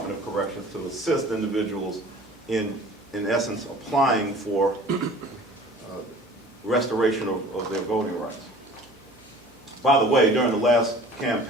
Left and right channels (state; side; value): normal; both; correlation 0.46